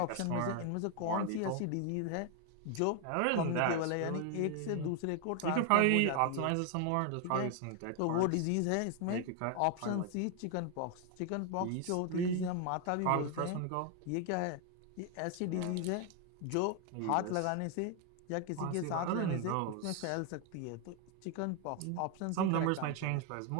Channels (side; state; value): both; different; correlation 0.01